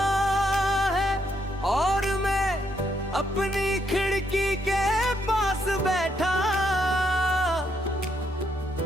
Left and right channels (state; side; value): normal; both; correlation 0.75